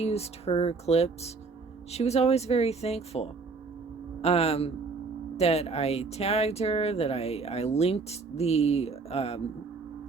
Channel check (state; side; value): quieter; left; 4.3 dB